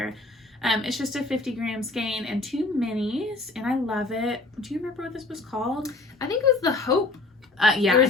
It's just a 50-gram skein and 2 minis, and I love it. Do you remember what this was called? I think it was the Hope. Yeah. There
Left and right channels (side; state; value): right; quieter; 3.3 dB